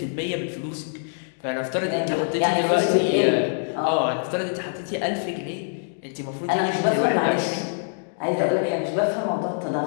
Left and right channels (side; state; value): right; silent; 62 dB below the other